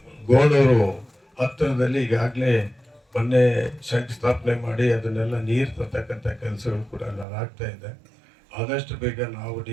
ಗೋಣೂರು ಹತ್ತಿರದಲ್ಲಿ ಈಗಾಗಲೇ ಮೊನ್ನೆ ಶಂಕುಸ್ಥಾಪನೆ ಮಾಡಿ ಅದನ್ನೆಲ್ಲ ನೀರು ತರ್ತಕ್ಕಂಥ ಕೆಲಸಗಳು ಕೂಡ ಆಗ್ತಾ ಇದೆ. ಆದಷ್ಟು ಬೇಗ ನಾವು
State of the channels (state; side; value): drops out; left; at 7.2 s